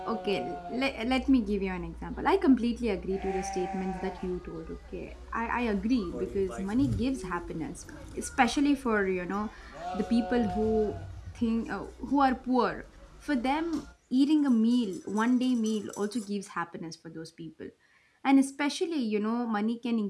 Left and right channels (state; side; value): identical; both; correlation 1.00